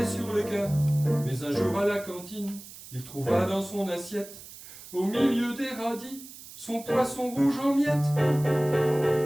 sur le cœur. Mais un jour à la cantine, il trouva dans son assiette, au milieu des radis, son poisson rouge en miettes.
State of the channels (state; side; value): noise; right; hiss, 16 dB below the sound